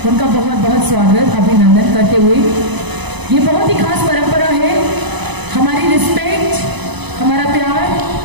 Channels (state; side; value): late; left; 1.0 ms